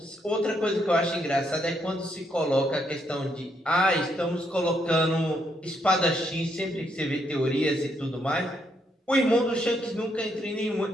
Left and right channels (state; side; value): normal; both; correlation 0.75